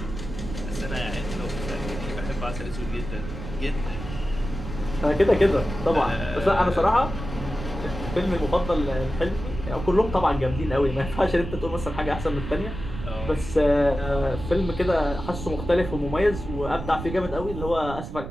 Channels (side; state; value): right; noise; rumble, 8 dB below the sound